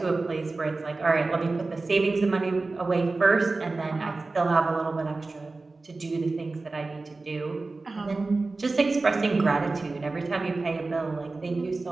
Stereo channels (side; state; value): left; quieter; 3.5 dB